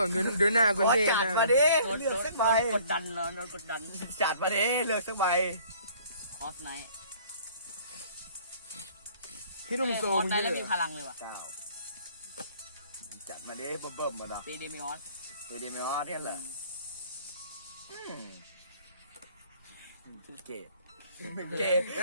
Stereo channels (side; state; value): both; inverted; correlation -0.56